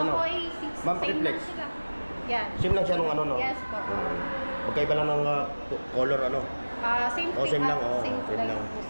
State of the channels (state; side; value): inverted; both; correlation -1.00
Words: Oppo A6, Ma'am, same pakiflex. lang sila. Yan. Same lang siya nung ano, no? Yes po. Magkaiba lang ng color, ano? Same Oh, same lang, oh, same same lang lang. po,